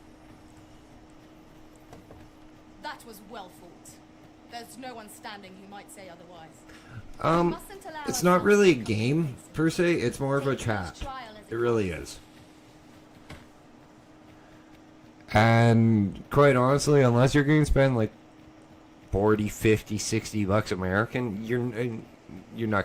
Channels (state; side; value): identical; both; correlation 1.00